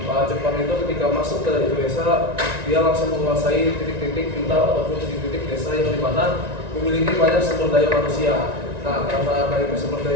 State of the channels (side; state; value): left; late; 1.9 ms